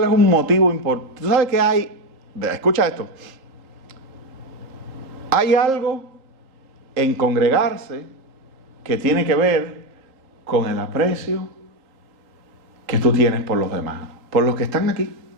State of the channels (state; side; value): late; left; 3.8 ms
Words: es un motivo importante? ¿Tú sabes que hay? Escucha esto. Hay algo en congregarse que tiene que ver con el aprecio que tú tienes por los demás, por los que están aquí.